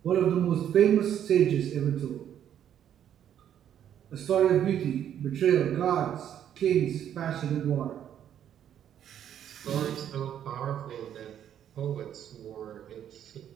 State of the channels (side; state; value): left; quieter; 9.9 dB